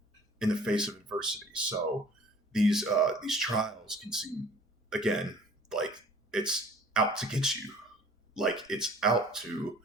in the face of adversity. So these trials can seem, again, like it's out to get you, like it's out to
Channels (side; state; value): both; normal; correlation 0.50